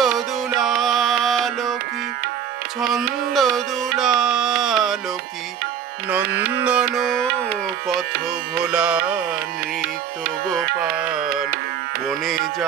দুলাল কি ছন্দ দুলাল কি নন্দন পথ ভোলা নৃত্য গোপাল বনে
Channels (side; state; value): left; quieter; 8.5 dB